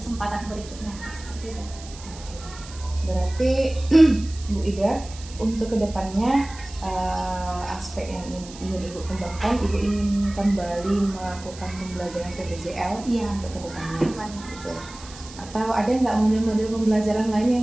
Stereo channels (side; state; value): right; noise; hiss, 17 dB below the sound